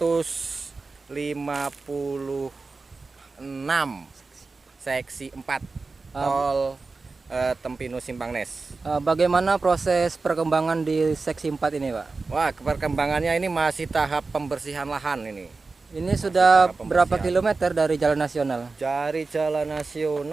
seksi 4 Uh, tol Tempinu Simpangnes. Bagaimana proses perkembangan di seksi 4 ini, Pak? Wah, perkembangannya ini masih tahap pembersihan lahan ini. Ini sudah tahap berapa pembersihan. kilometer dari jalan nasional? Dari jalan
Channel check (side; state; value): left; quieter; 3.9 dB